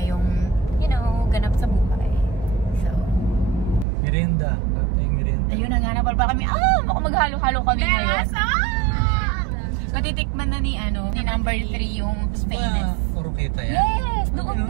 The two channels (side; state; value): left; drops out; at 3.9 s